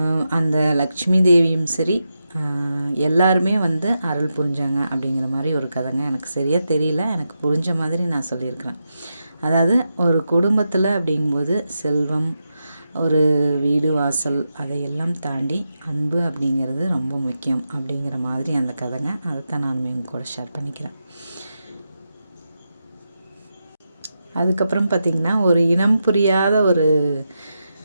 அந்த லக்ஷ்மி தேவியும் சரி எல்லாருமே வந்து அருள் புரிஞ்சாங்க அப்படிங்கிற மாதிரி ஒரு கதைங்க. எனக்கு சரியாக தெரியல, எனக்கு புரிஞ்ச மாதிரி நான் சொல்லியிருக்கிறேன். அதாவது ஒரு குடும்பத்தில் அப்படிங்கும்போது செல்வம் ஒரு வீடு வாசல் அதையெல்லாம் தாண்டி அன்பு அப்படிங்கிறது ரொம்ப முக்கியம் அப்படிங்கிற மாதிரி அந்த கதைங்க. அதைத்தான் நானுமே உங்க கூட ஷேர் பண்ணிக்கிறேன். அதுக்கப்புறம் பார்த்திங்கன்னா ஒரு இனம் புரியாத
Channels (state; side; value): inverted; both; correlation -0.88